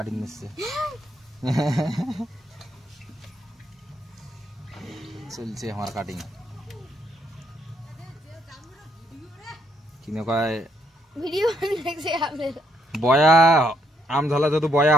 নিচ্ছে চলছে আমার কাটিং কিনে কয় ভিডিও দেখছে আপনি বয়া আম ঝালা যদি বয়া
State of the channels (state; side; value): normal; both; correlation 0.73